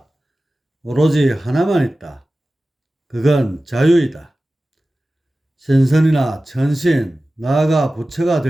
오로지 하나만 있다. 그건 자유이다. 신선이나 천신, 나아가 부처가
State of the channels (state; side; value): normal; both; correlation 0.96